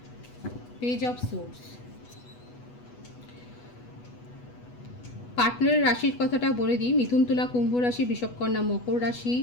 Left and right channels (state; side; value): late; right; 8.2 ms